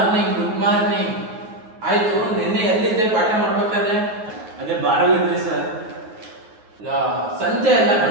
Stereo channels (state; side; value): late; left; 9.5 ms